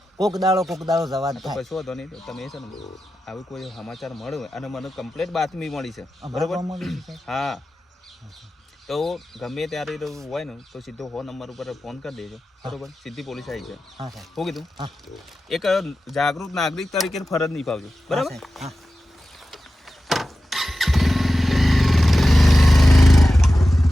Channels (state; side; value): normal; both; correlation 0.93